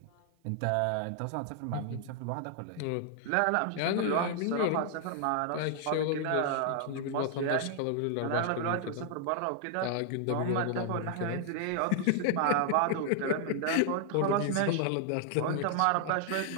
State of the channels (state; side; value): different; both; correlation 0.00